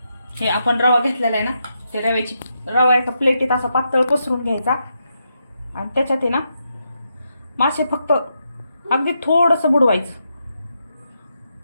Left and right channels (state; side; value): inverted; both; correlation -0.83